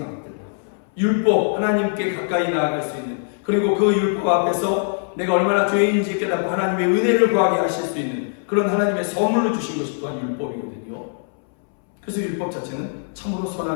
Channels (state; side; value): silent; right; 64 dB below the other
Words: 율법, 하나님께 가까이 나아갈 수 있는, 그리고 그 율법 앞에서 내가 얼마나 죄인인지 깨닫고 하나님의 은혜를 구하게 하실 수 있는 그런 하나님의 선물로 주신 것이 또한 율법이거든요. 그래서 율법 자체는 참으로